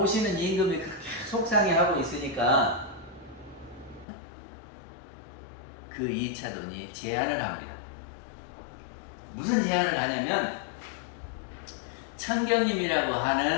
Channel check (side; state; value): right; drops out; at 4.0 s